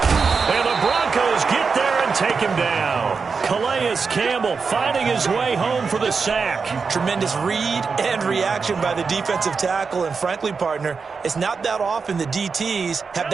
And the Broncos get there and take him down. Calais Campbell finding his way home for the sack. Tremendous read and reaction by the defensive tackle. And frankly, partner, it's not that often the DTs have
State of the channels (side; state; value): left; quieter; 5.1 dB